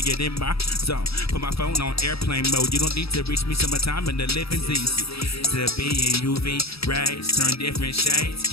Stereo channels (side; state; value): right; late; 0.77 ms